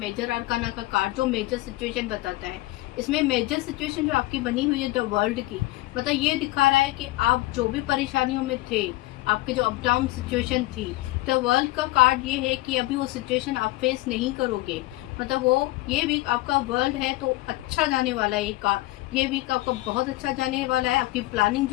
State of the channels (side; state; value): right; quieter; 18.9 dB